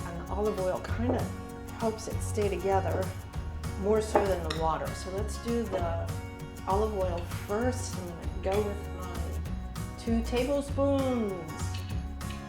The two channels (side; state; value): both; identical; correlation 1.00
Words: and the olive oil kind of helps it stay together more so than the water. So let's do the olive oil first. I'm going to go with my 2 tablespoons.